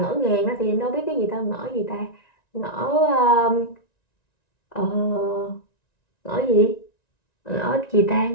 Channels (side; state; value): right; late; 1.9 ms